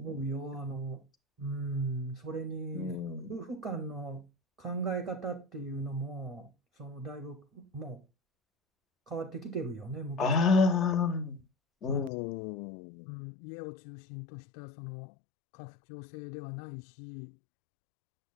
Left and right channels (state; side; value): drops out; right; at 12.1 s